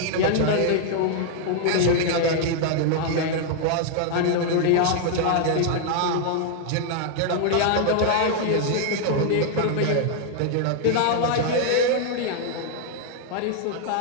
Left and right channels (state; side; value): different; both; correlation 0.00